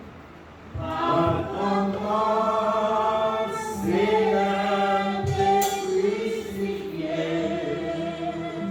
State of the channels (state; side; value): identical; both; correlation 1.00